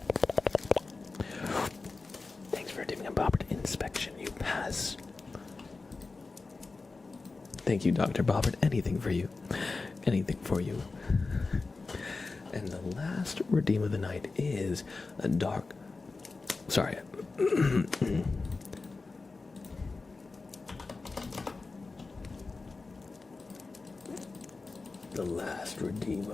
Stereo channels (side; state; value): right; quieter; 3.9 dB